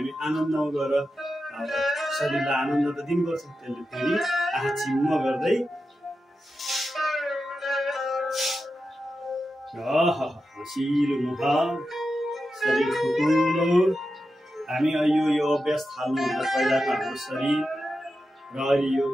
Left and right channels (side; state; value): both; normal; correlation 0.90